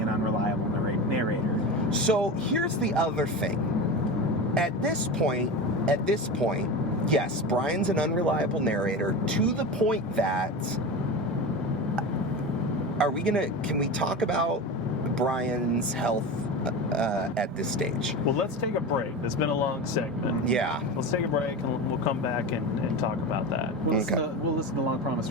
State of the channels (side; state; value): both; normal; correlation 0.25